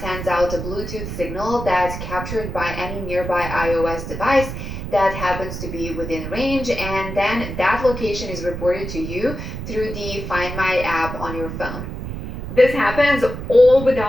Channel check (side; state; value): right; noise; rumble, 7 dB below the sound